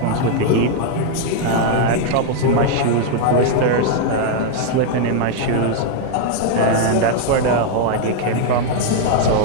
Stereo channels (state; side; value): different; both; correlation 0.00